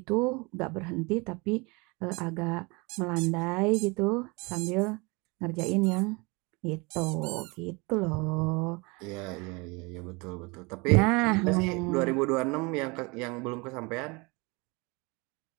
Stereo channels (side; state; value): left; quieter; 27.4 dB